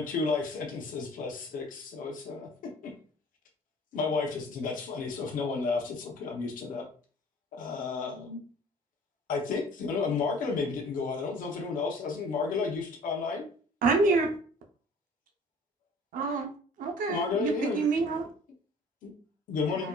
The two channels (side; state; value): both; normal; correlation 0.49